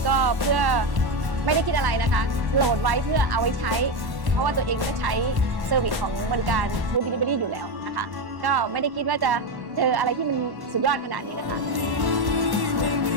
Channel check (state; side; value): late; left; 1.1 ms